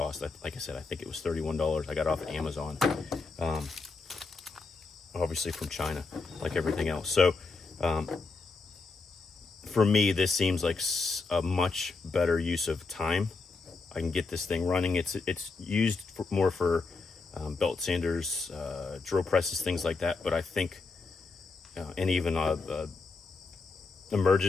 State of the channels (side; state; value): right; quieter; 4.1 dB